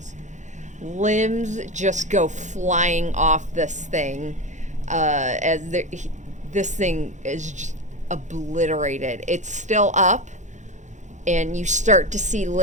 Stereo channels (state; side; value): late; left; 0.35 ms